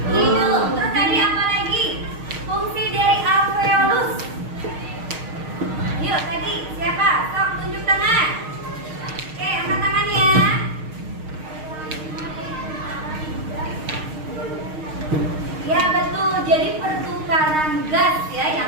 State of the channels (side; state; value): left; late; 6.5 ms